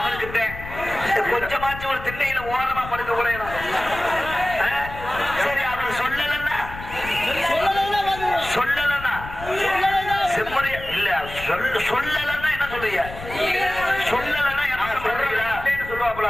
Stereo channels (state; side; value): noise; left; rumble, 12 dB below the sound